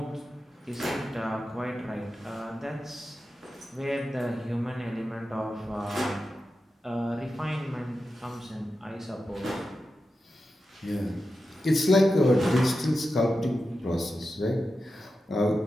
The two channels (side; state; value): both; normal; correlation 0.91